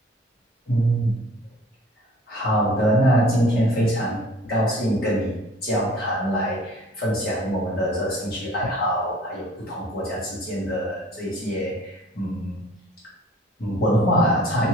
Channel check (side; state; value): both; normal; correlation 0.50